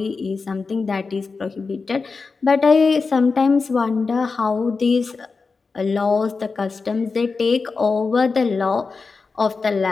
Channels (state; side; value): quieter; right; 4.5 dB